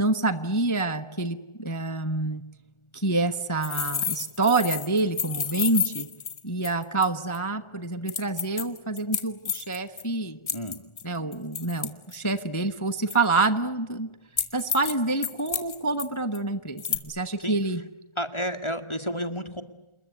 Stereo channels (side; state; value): right; late; 1.4 ms